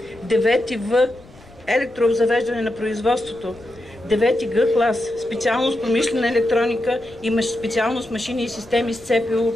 9 В електрообзавеждане на производството. 9-ти Г клас, специалност промишлена електроника и специалност машини и системи с ЦПУ.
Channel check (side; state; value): left; noise; rumble, 23 dB below the sound